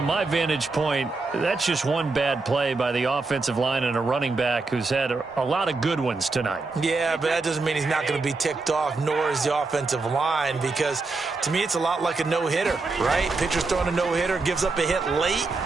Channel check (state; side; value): quieter; left; 3.8 dB